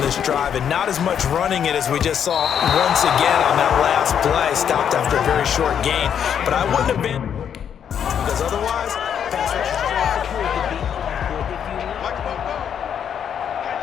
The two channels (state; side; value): quieter; right; 8.4 dB